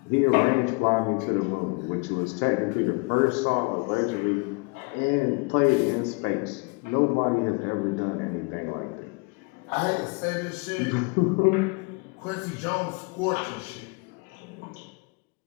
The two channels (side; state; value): right; quieter; 30.3 dB